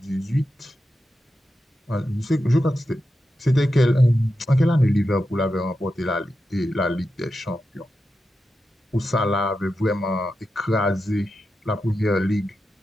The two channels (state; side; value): normal; both; correlation 0.89